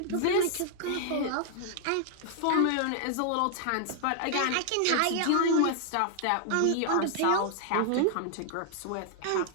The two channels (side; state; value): both; different; correlation -0.01